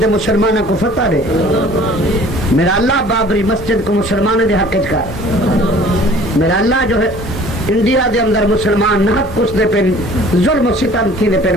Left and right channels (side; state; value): both; normal; correlation 0.50